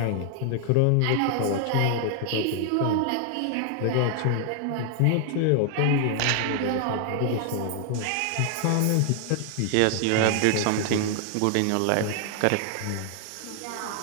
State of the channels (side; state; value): both; different; correlation 0.00